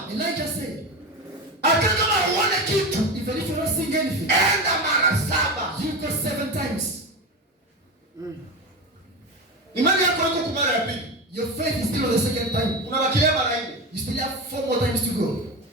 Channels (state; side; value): normal; both; correlation 0.21